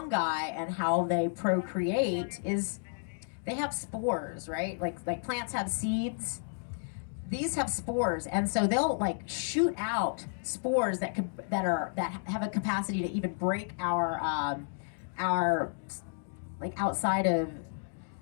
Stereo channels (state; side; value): silent; right; digital silence